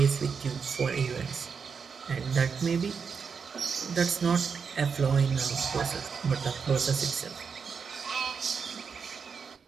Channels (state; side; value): quieter; left; 6.0 dB